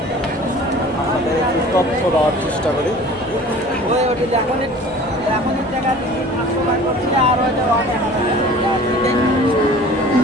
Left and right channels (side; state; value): both; normal; correlation 0.45